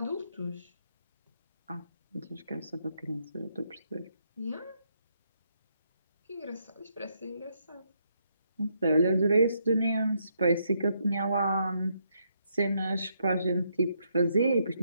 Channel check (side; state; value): both; inverted; correlation -0.76